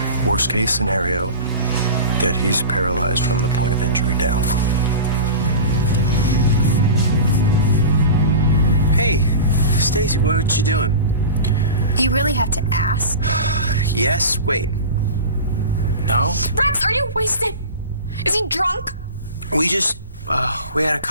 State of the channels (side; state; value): both; inverted; correlation -0.31